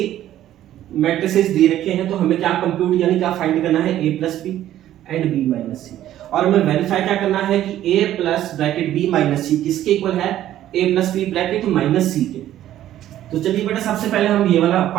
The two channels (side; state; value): left; quieter; 12.6 dB